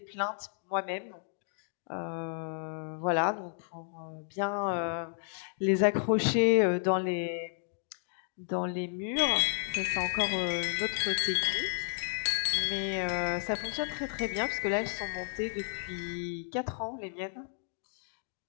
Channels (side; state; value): right; silent; digital silence